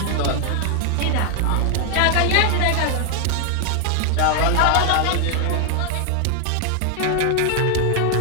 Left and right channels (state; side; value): different; both; correlation 0.00